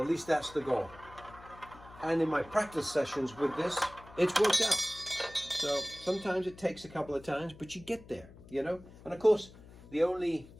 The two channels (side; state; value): left; noise; hum, 20 dB below the sound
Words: at least that's the goal. And in my practice sessions with this, it's worked out. So sometimes it takes a couple of times, but you get there, you know? And of course, the only